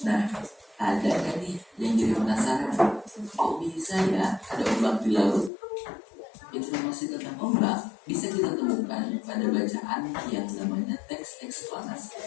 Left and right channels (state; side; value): drops out; right; at 5.5 s